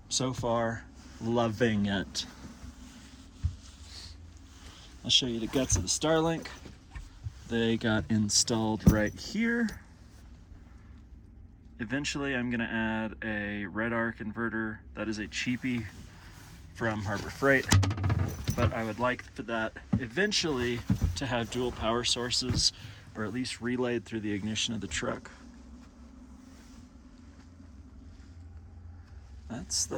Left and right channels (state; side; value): identical; both; correlation 1.00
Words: So far, loving it. I'll show you the guts of the Starlink. They got installed right here. Eventually I'm gonna add a RedArc inverter. That is a cheapie from Harbor Freight, but I would like for that eventually to have dual power sources, or at least relayed through the ignition of the truck.